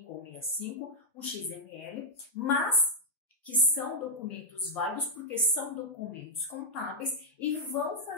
ou 65, um XML, mas que são documentos válidos porque são documentos contábeis e vão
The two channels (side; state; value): both; normal; correlation -0.07